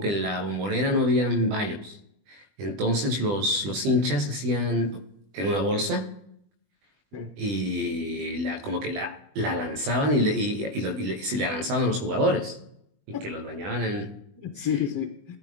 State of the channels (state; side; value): late; left; 20 ms